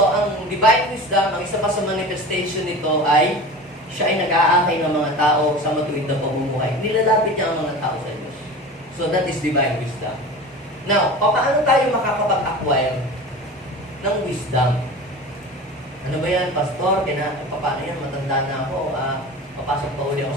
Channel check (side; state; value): both; normal; correlation 0.34